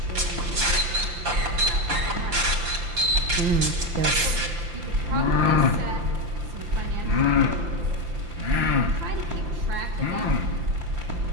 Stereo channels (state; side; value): late; left; 5.8 ms